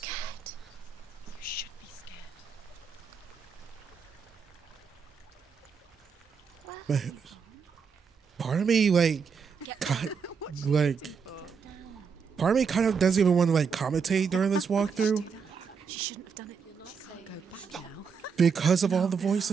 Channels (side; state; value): left; quieter; 6.0 dB